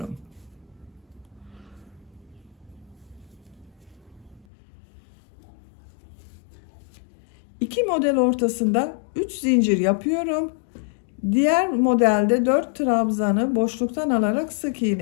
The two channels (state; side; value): drops out; right; at 4.5 s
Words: İki model ortasında 3 zincir yapıyorum. Diğer modelde 4 trabzanı boşluktan alarak sık